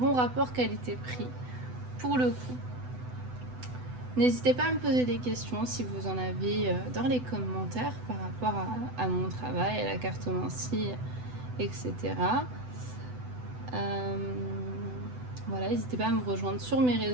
rapport qualité-prix pour le coup. N'hésitez pas à me poser des questions si vous en avez dans les commentaires par rapport à mon travail, à la cartomancie, etc. Voilà, n'hésitez pas à me rejoindre sur mes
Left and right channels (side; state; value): left; late; 8.0 ms